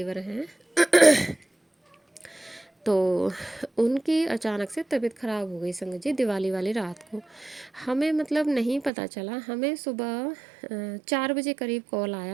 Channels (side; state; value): left; drops out; at 8.9 s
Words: हैं तो उनकी अचानक से तबीयत ख़राब हो गई संगत जी दिवाली वाली रात को। हमें मतलब नहीं पता चला, हमें सुबह 4 बजे करीब कॉल